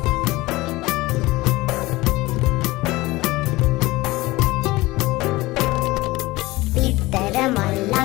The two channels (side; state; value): right; quieter; 20.0 dB